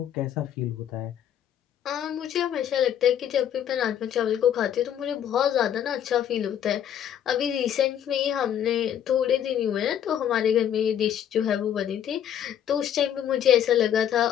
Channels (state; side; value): quieter; right; 9.8 dB